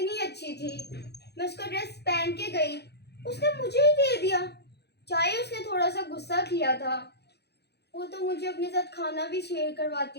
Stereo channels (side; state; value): right; late; 0.48 ms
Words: अच्छी थी, मैं उसका ड्रेस पहन के गई, उसने मुझे ही दे दिया। चाहे उसने थोड़ा सा गुस्सा किया था, वो तो मुझे अपने साथ खाना भी शेयर